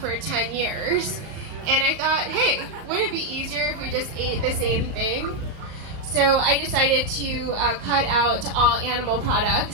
10 years. And I thought, hey, wouldn't it be easier if we just ate the same thing? So I decided to cut out all animal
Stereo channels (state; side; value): late; left; 37 ms